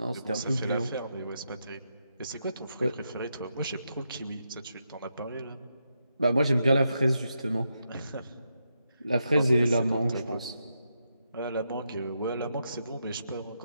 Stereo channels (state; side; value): inverted; both; correlation -0.83